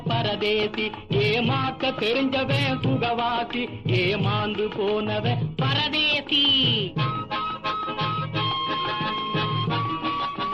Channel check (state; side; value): identical; both; correlation 1.00